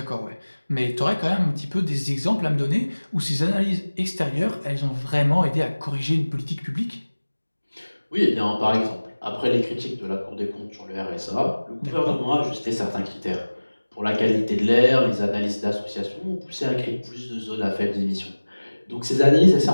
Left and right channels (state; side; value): inverted; both; correlation -1.00